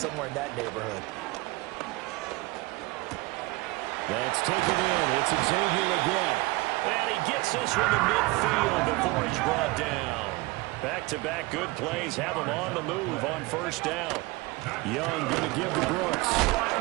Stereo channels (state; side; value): quieter; left; 22.8 dB